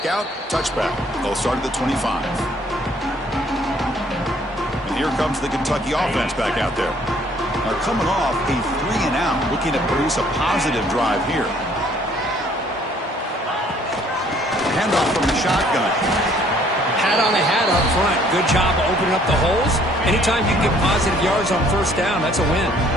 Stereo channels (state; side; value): normal; both; correlation 0.60